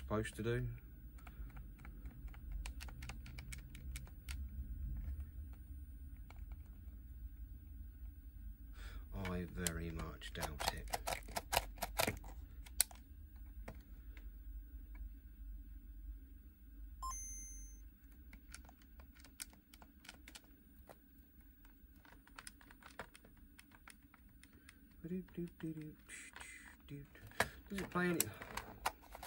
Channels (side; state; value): both; identical; correlation 1.00